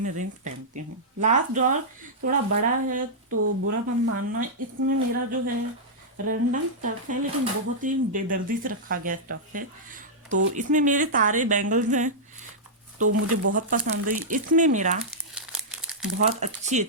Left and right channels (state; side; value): normal; both; correlation -0.10